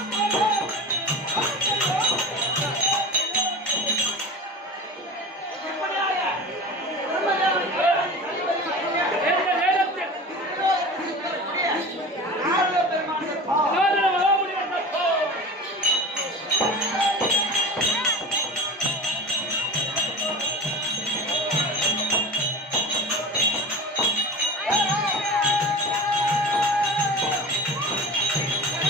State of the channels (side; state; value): both; normal; correlation 0.33